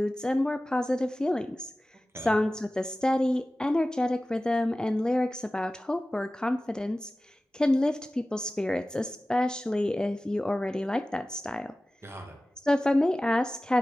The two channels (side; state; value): both; normal; correlation 0.96